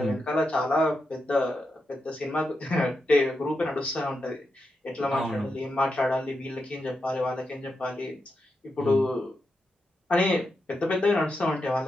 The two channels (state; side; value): normal; both; correlation 0.86